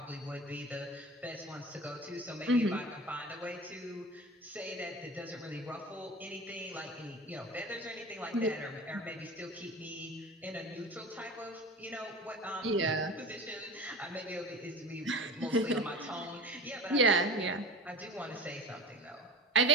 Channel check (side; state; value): both; normal; correlation 0.34